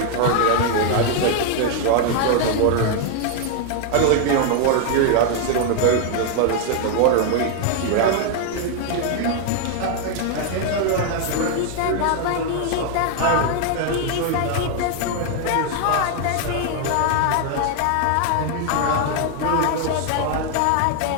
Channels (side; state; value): both; different; correlation 0.00